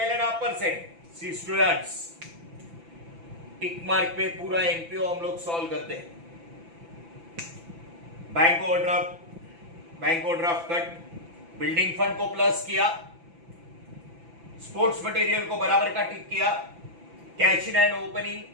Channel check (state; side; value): late; left; 5.9 ms